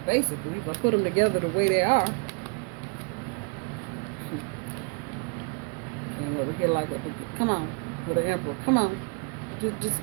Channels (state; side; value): quieter; left; 36.0 dB